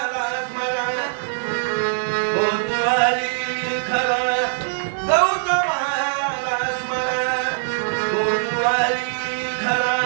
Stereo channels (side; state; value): left; silent; digital silence